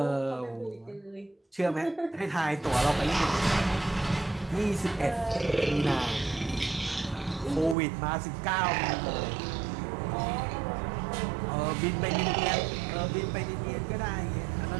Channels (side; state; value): left; drops out; at 7.8 s